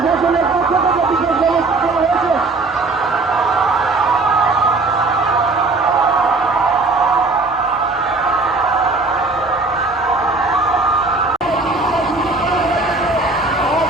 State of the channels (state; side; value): quieter; left; 3.4 dB